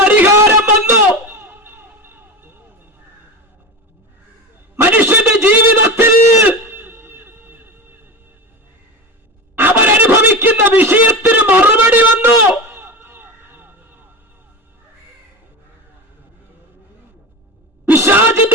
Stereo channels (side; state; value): both; normal; correlation 0.24